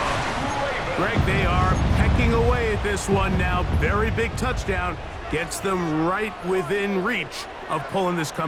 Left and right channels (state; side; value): identical; both; correlation 1.00